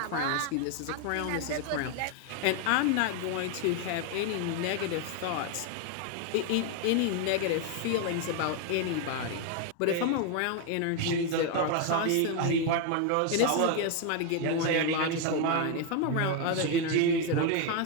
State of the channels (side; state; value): both; different; correlation 0.01